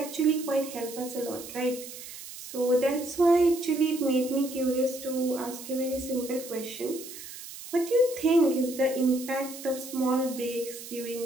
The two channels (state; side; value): noise; right; hiss, 13 dB below the sound